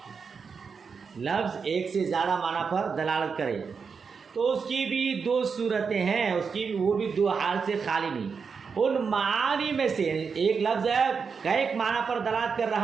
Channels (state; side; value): quieter; left; 5.6 dB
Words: لفظ ایک سے زیادہ معنی پر دلالت کرے تو اس کی بھی دو صورتیں ہیں، اس کی وہ بھی دو حال سے خالی نہیں. ان معانی میں سے ایک لفظ ہے کئی معنی پر دلالت کر